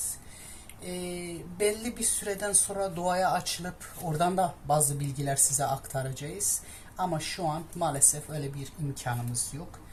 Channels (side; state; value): both; identical; correlation 1.00